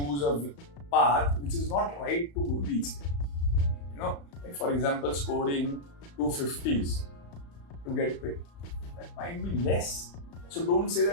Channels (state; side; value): late; right; 35 ms